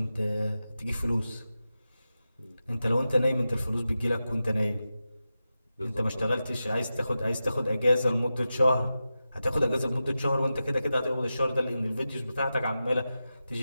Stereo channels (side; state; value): both; inverted; correlation -0.92